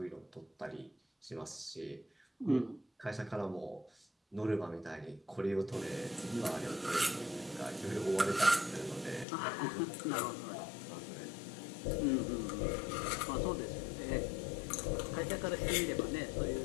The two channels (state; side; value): drops out; right; at 9.2 s